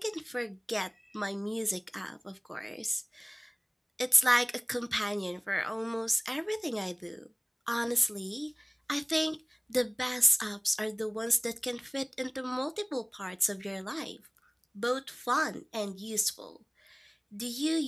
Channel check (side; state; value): both; identical; correlation 1.00